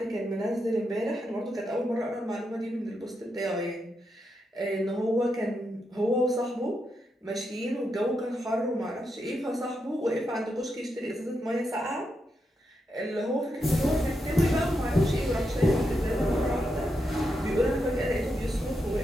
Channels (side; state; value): both; normal; correlation 0.84